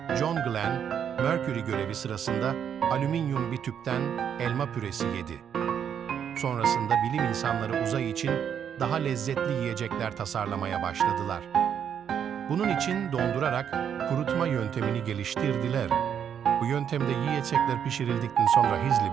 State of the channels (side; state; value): left; quieter; 8.4 dB